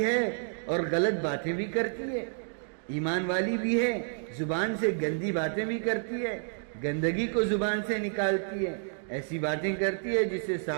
ہے اور غلط باتیں بھی کرتی ہے، ایمان والی بھی ہے، زبان سے گندی باتیں بھی کرتی ہے، گندگی کو زبان سے نکالتی ہے، ایسی باتیں کرتی ہے جس سے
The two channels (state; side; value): silent; left; digital silence